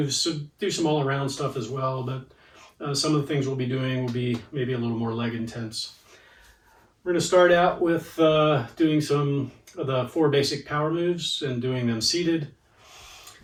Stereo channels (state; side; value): identical; both; correlation 1.00